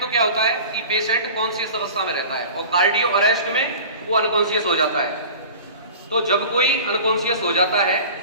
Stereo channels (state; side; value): inverted; both; correlation -0.38